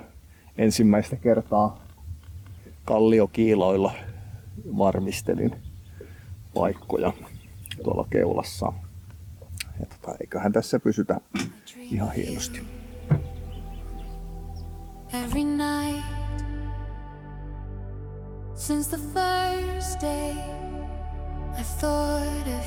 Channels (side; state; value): both; identical; correlation 1.00